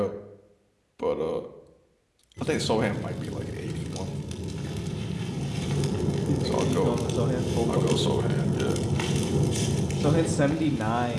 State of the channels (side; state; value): both; identical; correlation 1.00